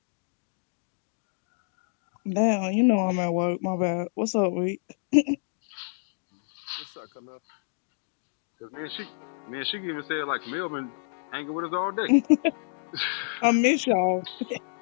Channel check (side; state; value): right; silent; digital silence